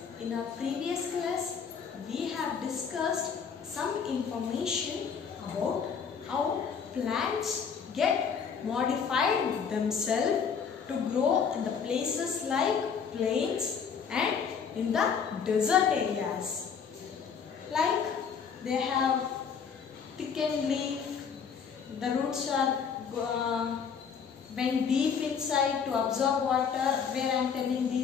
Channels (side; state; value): right; quieter; 6.5 dB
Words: in our previous class, we have discussed some information about how plants get modified themselves to grow in the places like plains and in the desert areas. Like they have thickened leaf, the roots are went deep inside to absorb water, where I am telling